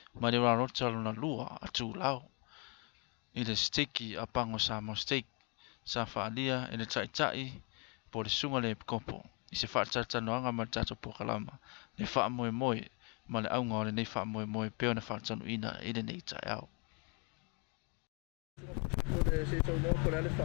Ma le rarota na lua a tu lao. I le steki a pango sa mo steak. Sa whaalia e le tai po le sunga le kopo. I se whaatanoanga ma tato pokalama. Le wha moe moe. Ma le aunga o le nei wha moe moe peo na whaatanu ina i le nei tai au. O le se tau no ko le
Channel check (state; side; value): quieter; right; 34.1 dB